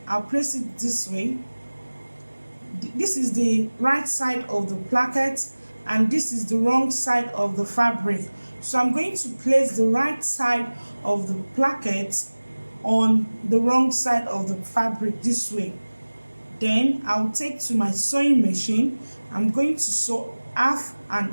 I'll place it this way. This is the right side of the placket, and this is the wrong side of the fabric. So I'm going to place the right side of the placket on the wrong side of the fabric this way. Then I'll take to my sewing machine. I'm going to sew half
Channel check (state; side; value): inverted; both; correlation -1.00